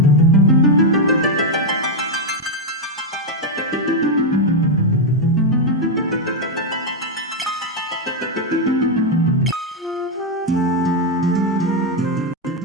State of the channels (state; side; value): normal; both; correlation 0.02